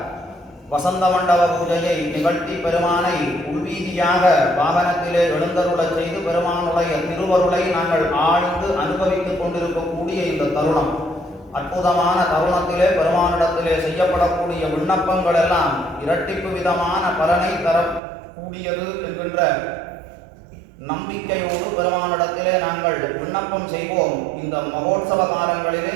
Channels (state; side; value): drops out; left; at 18.0 s